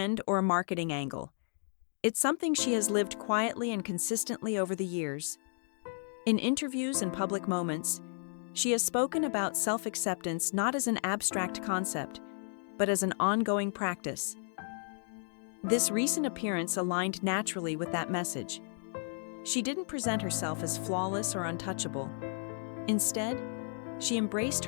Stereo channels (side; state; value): right; silent; 56 dB below the other